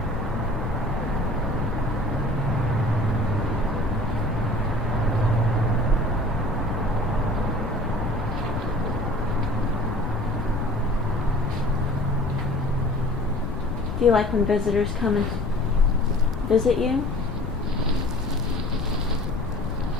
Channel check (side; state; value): left; noise; rumble, 4 dB below the sound